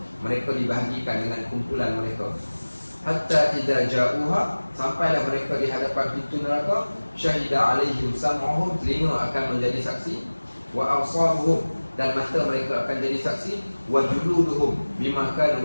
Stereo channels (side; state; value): both; inverted; correlation -1.00